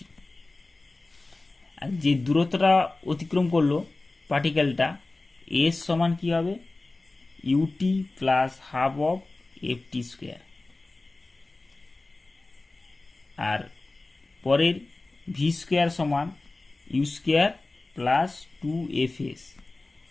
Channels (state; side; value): quieter; right; 3.2 dB